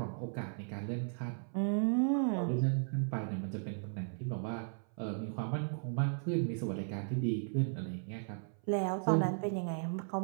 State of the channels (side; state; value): left; silent; 54 dB below the other